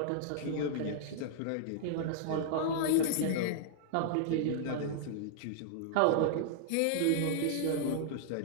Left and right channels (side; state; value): both; different; correlation -0.01